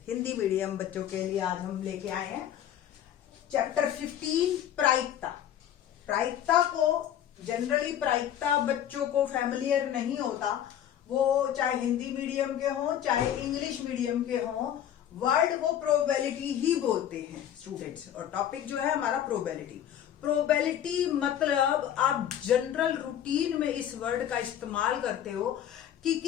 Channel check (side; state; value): right; quieter; 10.5 dB